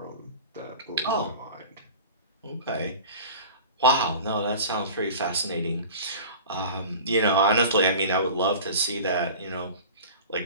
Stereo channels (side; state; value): both; inverted; correlation -0.38